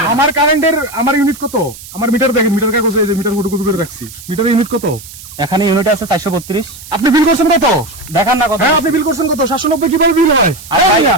আমার কারেন্টের আমার ইউনিট কত? আমার মিটার দেখেন, মিটার কাগজ এই যে মিটার গুটু গুটু করে রাখছি। মিটারের ইউনিট কত? এখানে ইউনিট আছে 432। আপনি বিল করছেন কত? দেখান না কত। হ্যাঁ আপনি বিল করছেন কত? 790 কিভাবে বিল হয়?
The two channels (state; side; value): noise; right; hiss, 16 dB below the sound